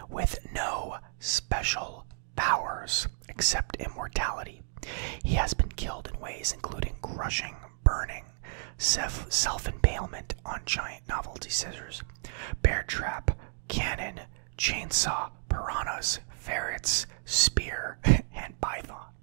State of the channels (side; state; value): left; silent; digital silence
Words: with no special powers except immortality. He has been killed in ways including crushing, burning, self-impalement on giant novelty scissors, bear trap, cannon, chainsaw, piranhas, ferrets, spear, and python.